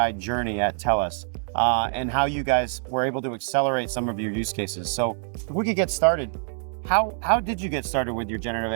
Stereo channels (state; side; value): silent; left; digital silence